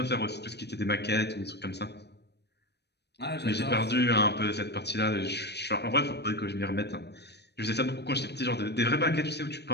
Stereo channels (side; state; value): right; late; 0.49 ms